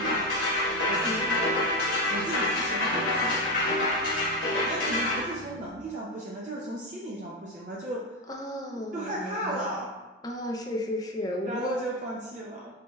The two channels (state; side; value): normal; both; correlation 0.12